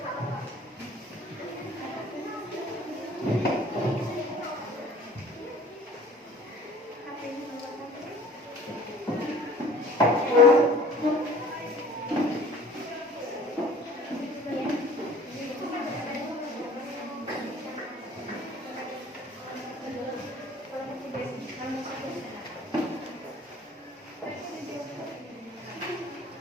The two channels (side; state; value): both; normal; correlation 0.49